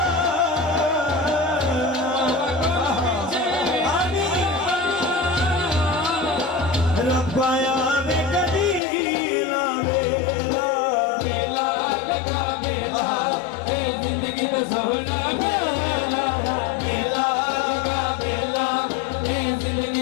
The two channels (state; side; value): drops out; right; at 8.8 s